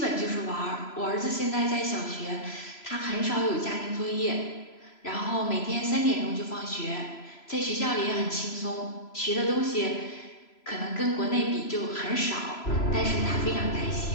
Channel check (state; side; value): late; right; 3.0 ms